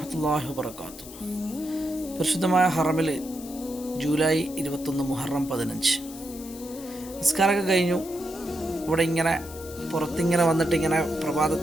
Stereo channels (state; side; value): noise; left; hiss, 16 dB below the sound